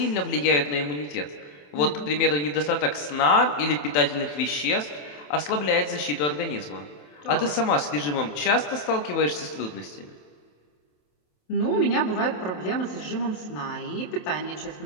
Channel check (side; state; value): right; late; 27 ms